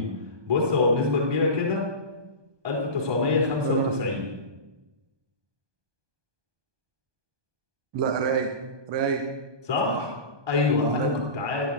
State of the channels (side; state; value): left; late; 1.2 ms